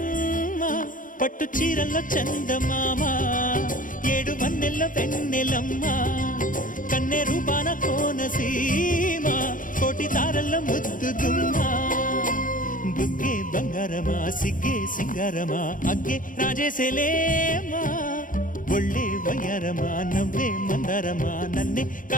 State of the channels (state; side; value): late; right; 0.39 ms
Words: పట్టు చీరల్లో చందమామ 7 వన్నెల్లో వెన్నెలమ్మా కన్నె రూపాన కోనసీమ కోటి తారల్లో ముద్దుగుమ్మా బుగ్గే బంగారమా సిగ్గే సింగారమా అగ్గే రాజేసేలేమా ఒళ్ళే వయ్యారమా నవ్వే మందారమా నన్నే